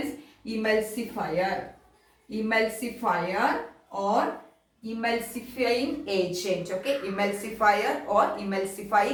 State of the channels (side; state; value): both; identical; correlation 1.00